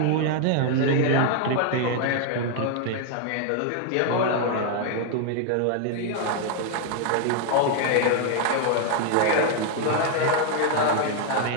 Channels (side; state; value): both; different; correlation 0.00